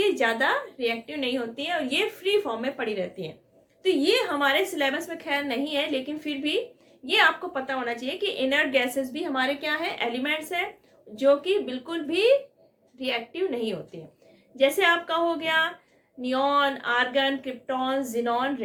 ज्यादा रिएक्टिव नहीं होती है और ये फ्री फॉर्म में पड़ी रहती है। तो ये हमारे सिलेबस में खैर नहीं है, लेकिन फिर भी ये आपको पता होना चाहिए कि इनर्ट गैसेस भी हमारे क्या है, एलिमेंट्स है, जो कि बिल्कुल भी रिएक्टिव नहीं होती है। जैसे आपका हो गया neon, argon, krypton, xenon,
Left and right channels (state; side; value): identical; both; correlation 1.00